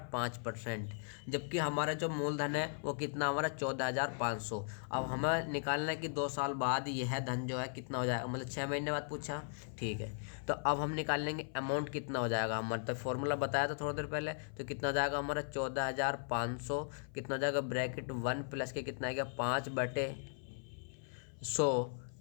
5%, जबकि हमारा जो मूलधन है वो कितना हमारा 14,500। अब हमें निकालना है कि 2 साल बाद यह धन जो है कितना हो जाएगा, मतलब 6 महीने बाद पूछा, ठीक है। तो अब हम निकाल लेंगे अमाउंट कितना हो जाएगा हमारा, तो फॉर्मूला बताया था थोड़ी देर पहले, तो कितना हो जाएगा हमारा 14,500, कितना हो जाएगा ब्रैकेट 1 प्लस के कितना आएगा 5/100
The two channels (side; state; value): right; silent; 53 dB below the other